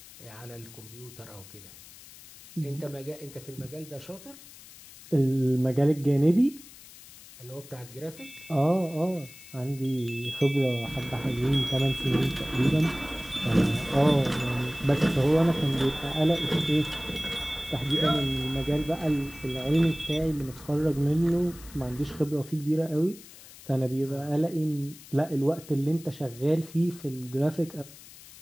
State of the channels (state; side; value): noise; left; hiss, 19 dB below the sound